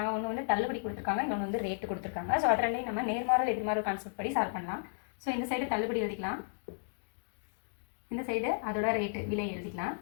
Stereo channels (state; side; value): silent; right; digital silence